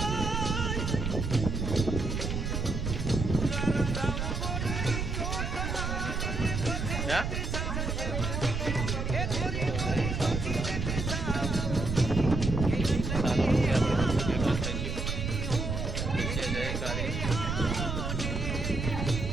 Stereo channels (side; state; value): right; noise; rumble, 2 dB below the sound